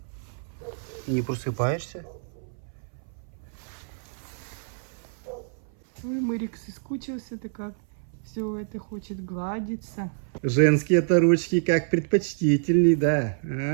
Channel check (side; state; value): left; silent; 58 dB below the other